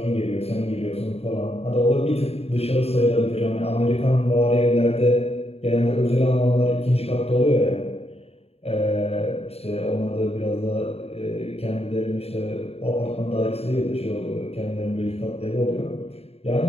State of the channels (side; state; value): right; late; 0.29 ms